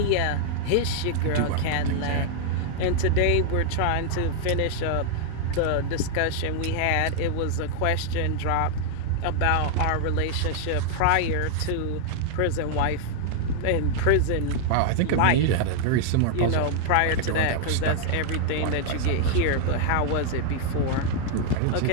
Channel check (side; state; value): both; different; correlation -0.01